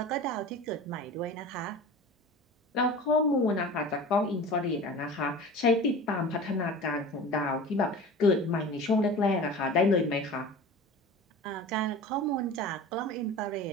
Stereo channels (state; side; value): normal; both; correlation 0.37